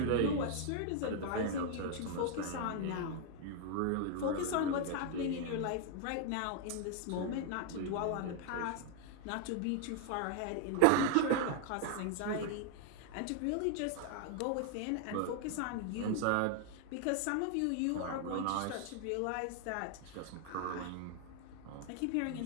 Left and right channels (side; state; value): both; different; correlation 0.00